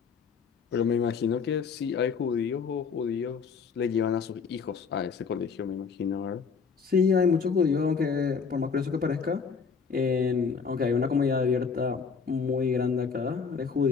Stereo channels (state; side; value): quieter; right; 5.6 dB